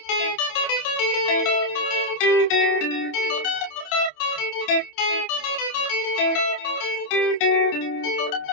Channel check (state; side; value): late; right; 28 ms